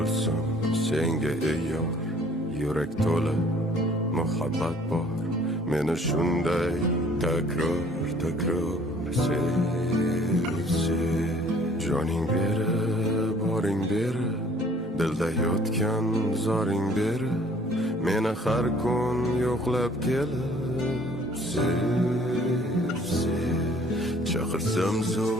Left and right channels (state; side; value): normal; both; correlation 0.56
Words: senga ey yor, yurak to'la muhabbat bor. Meni shunday takror sev. Joning beri, boring beri, dilda yotgan zoring beri, meni har kun yo'qlab kelib sev. Chaqirsam